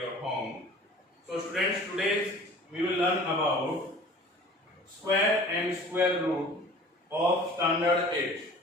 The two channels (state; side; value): normal; both; correlation 0.45